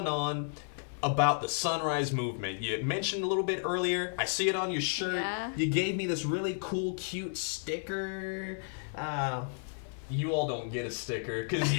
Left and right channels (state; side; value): silent; right; digital silence